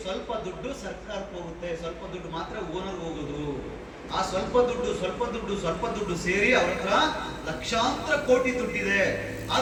ಸ್ವಲ್ಪ ದುಡ್ಡು ಸರ್ಕಾರಕ್ಕೆ ಹೋಗುತ್ತೆ, ಸ್ವಲ್ಪ ದುಡ್ಡು ಮಾತ್ರ ಓನರ್ ಹೋಗೋದು. ಆ ಸ್ವಲ್ಪ ದುಡ್ಡು ಸೇರಿ ಅವ್ರ ಹತ್ರ ಲಕ್ಷಾಂತರ ಕೋಟಿ ದುಡ್ಡಿದೆ.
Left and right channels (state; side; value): identical; both; correlation 1.00